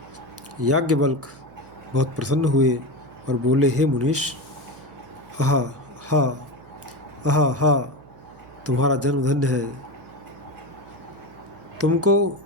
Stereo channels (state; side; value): noise; right; hum, 23 dB below the sound